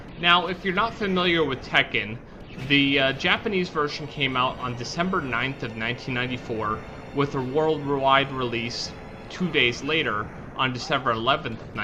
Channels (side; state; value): both; identical; correlation 1.00